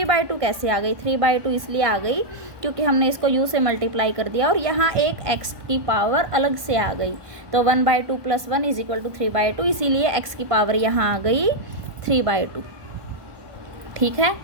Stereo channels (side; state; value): left; late; 1.2 ms